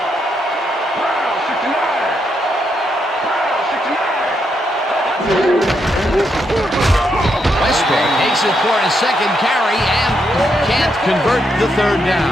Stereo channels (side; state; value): both; normal; correlation 0.79